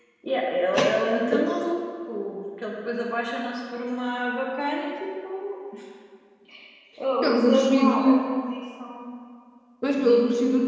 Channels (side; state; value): both; identical; correlation 1.00